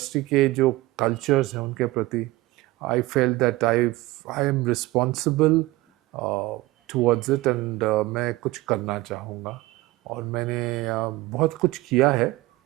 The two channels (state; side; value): quieter; left; 18.9 dB